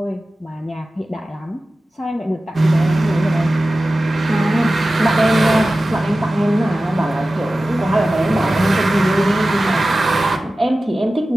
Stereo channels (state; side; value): normal; both; correlation 0.95